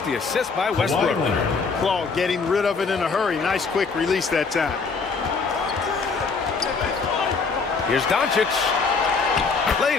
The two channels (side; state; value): right; quieter; 4.7 dB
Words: the assist by Westbrook. Claude getting rid of it in a hurry. Nice quick release that time. Here's Doncic.